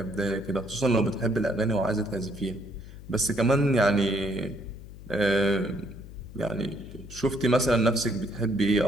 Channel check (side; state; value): left; noise; hum, 15 dB below the sound